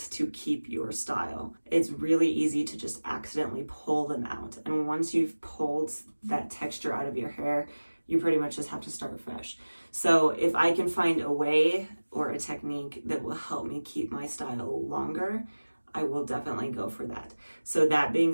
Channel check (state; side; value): inverted; both; correlation -1.00